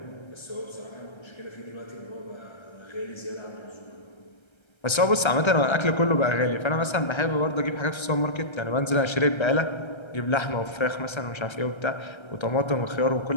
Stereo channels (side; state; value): right; late; 1.3 ms